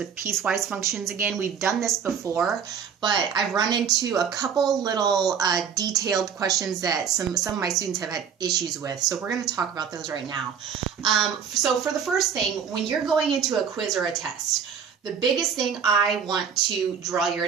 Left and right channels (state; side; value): quieter; left; 7.2 dB